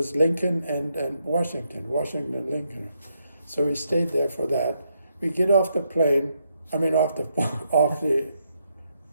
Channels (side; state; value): both; inverted; correlation -0.78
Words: Lincoln and Washington and Lincoln. So we stayed there for that. We get off the plane,